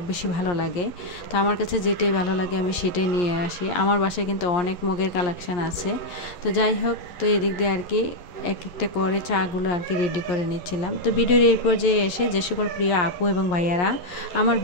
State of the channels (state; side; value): late; right; 11 ms